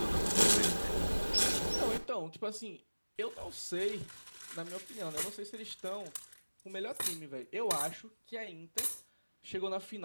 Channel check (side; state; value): both; inverted; correlation -1.00